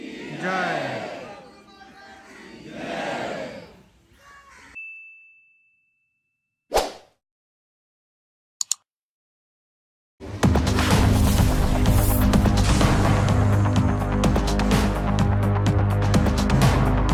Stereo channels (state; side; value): identical; both; correlation 1.00